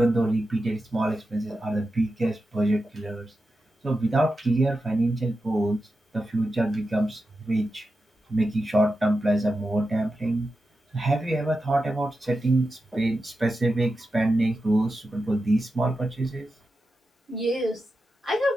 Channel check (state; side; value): normal; both; correlation 0.90